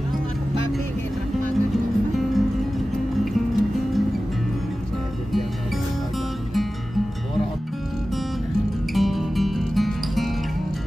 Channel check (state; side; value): normal; both; correlation 0.95